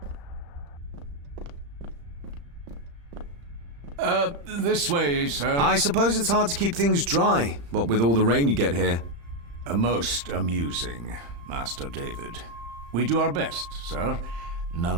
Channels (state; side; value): late; left; 35 ms